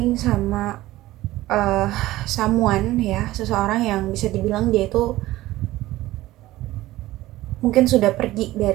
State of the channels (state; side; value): quieter; left; 16.7 dB